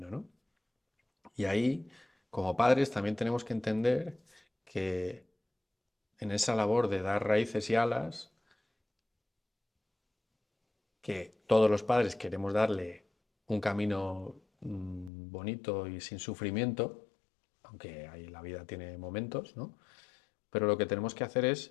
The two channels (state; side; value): drops out; right; at 15.1 s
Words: ¿no? Y ahí, como padres, también tenemos que entender que en esa labor de dar raíces y alas, que todos los padres queremos darle un camino bonito y sin sufrimiento, aunque ahí la vida tiene momentos, ¿no? Pero lo que tenemos que hacer